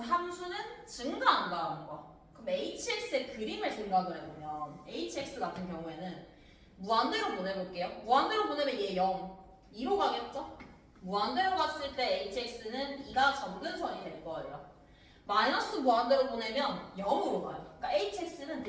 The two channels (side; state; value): both; identical; correlation 1.00